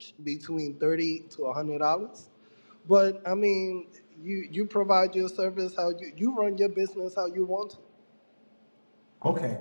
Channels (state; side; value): inverted; both; correlation -1.00